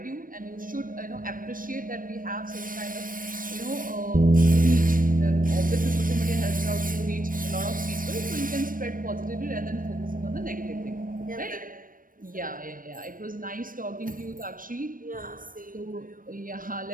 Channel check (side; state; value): left; late; 0.40 ms